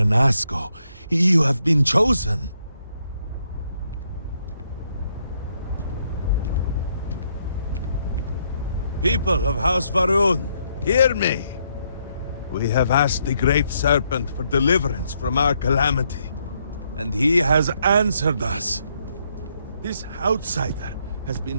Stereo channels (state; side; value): inverted; both; correlation -0.74